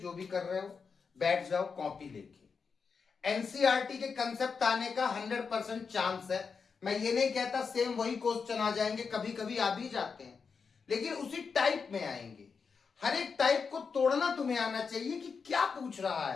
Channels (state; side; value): quieter; right; 5.5 dB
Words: भी कर रहे हो बैठ जाओ कॉपी लेके। एनसीईआरटी के कंसेप्ट आने का 100% चांस है। मैं ये नहीं कहता सेम वही क्वेश्चन आ जाएंगे, कभी कभी आ भी जाते हैं, लेकिन उसी टाइप में आएंगे। हर एक टाइप को तोड़ना तुम्हें आना चाहिए कि क्या पूछ रहा